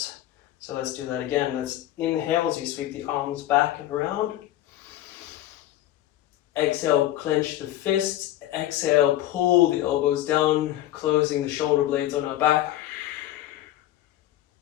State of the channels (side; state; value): right; quieter; 14.0 dB